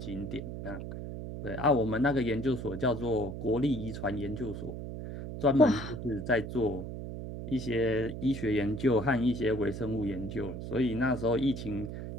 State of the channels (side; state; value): right; noise; hum, 7 dB below the sound